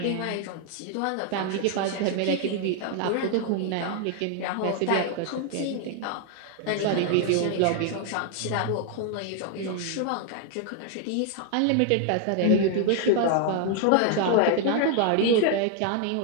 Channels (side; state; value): both; different; correlation 0.00